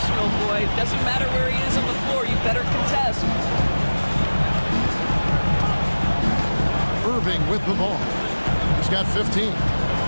boy. Doesn't matter where he is on the floor, you better contest. Irving with the ball. He's got 15. And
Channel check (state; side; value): inverted; both; correlation -1.00